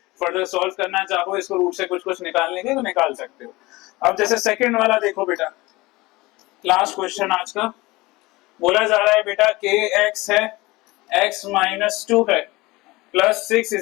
फर्दर सॉल्व करना चाहो इसको रूट से कुछ कुछ निकालने के तो निकाल सकते हो। अब जैसे सेकंड वाला देखो बेटा, लास्ट क्वेश्चन आज का, बोला जा रहा है बेटा के एक्स है, एक्स माइनस 2 है, प्लस 6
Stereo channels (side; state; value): right; quieter; 21.3 dB